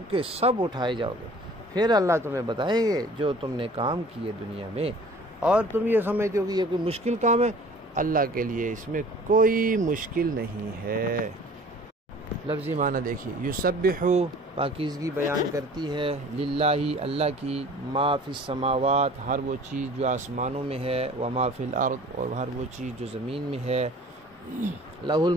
کے سب اٹھائے جاؤ گے، پھر اللہ تمہیں بتائیں گے جو تم نے کام کیے دنیا میں۔ اور تم یہ سمجھتے ہو کہ یہ کوئی مشکل کام ہے، اللہ کے لیے اس میں کوئی مشکل نہیں ہے۔ لفظی معنی دیکھیے، یسبح پاکیزگی بیان کرتی ہے، للہ اللہ کی، ما فی السماوات ہر وہ چیز جو آسمانوں میں ہے، وما فی الارض اور ہر وہ چیز جو زمین میں ہے، لہ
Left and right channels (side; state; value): both; normal; correlation 0.48